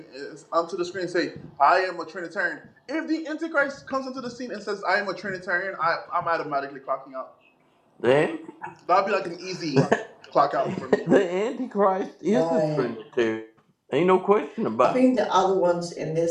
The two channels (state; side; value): identical; both; correlation 1.00